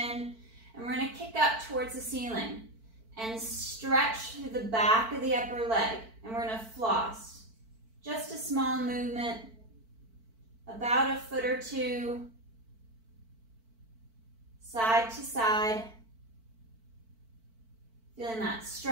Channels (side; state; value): left; late; 4.5 ms